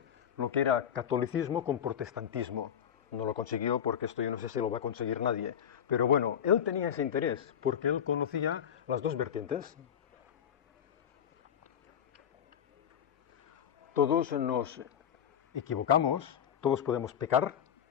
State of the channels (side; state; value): right; quieter; 8.8 dB